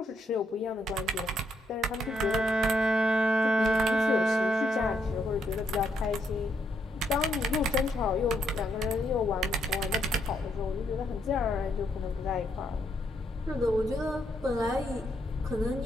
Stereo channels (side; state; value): both; normal; correlation 0.76